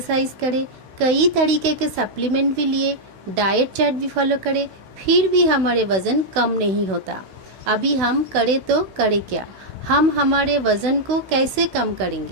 करें, कई तरीके के सप्लीमेंट भी लिए, डाइट चार्ट भी फॉलो करें, फिर भी हमारे वज़न कम नहीं होता। अभी हम करें तो करें क्या? हम हमारे वज़न को कैसे कम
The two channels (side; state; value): left; late; 16 ms